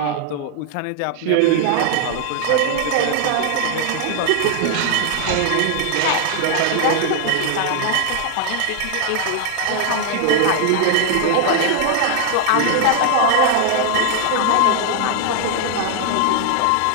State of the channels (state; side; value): different; both; correlation 0.00